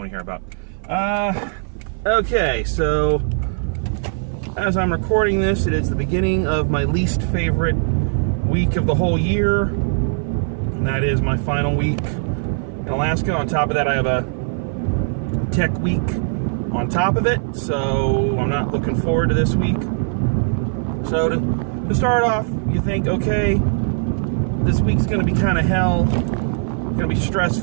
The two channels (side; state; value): left; silent; 56 dB below the other